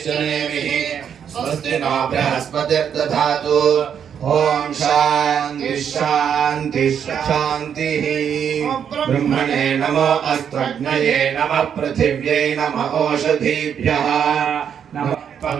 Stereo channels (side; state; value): left; quieter; 8.1 dB